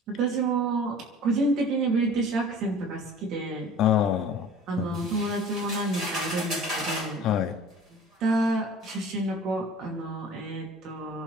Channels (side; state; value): both; normal; correlation 0.44